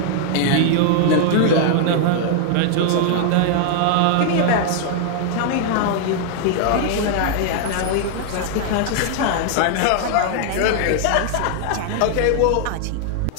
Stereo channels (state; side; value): different; both; correlation 0.00